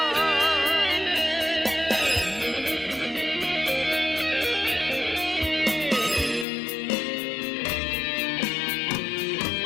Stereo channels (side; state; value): right; drops out; at 6.5 s